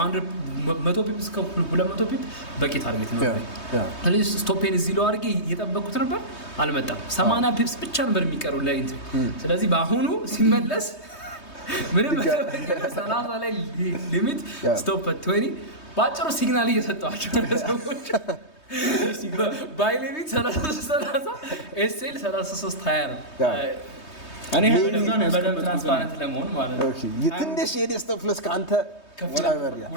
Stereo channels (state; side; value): late; right; 3.2 ms